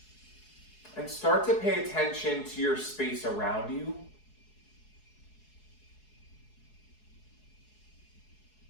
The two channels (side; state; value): right; late; 4.7 ms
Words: And start to pay attention to your space around you.